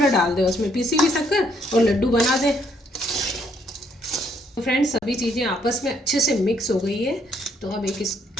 डाल दें उसमें, पीसी हुई शक्कर, और लड्डू बना दें। तो फ्रेंड्स, सभी चीज़ें आपस में अच्छे से मिक्स हो गई है। तो अब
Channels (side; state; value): both; normal; correlation 0.70